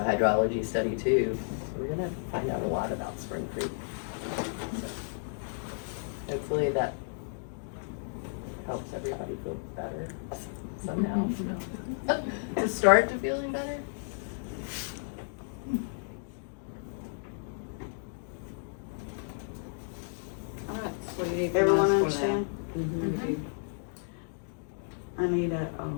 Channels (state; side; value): silent; right; digital silence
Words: hydrology study too. So we're gonna find out a lot about Spring Creek. So hopefully that helps everybody feel better somehow. To start to feeling better. All right, so what do you need from Everyone us for understand? that? Mhm. I need a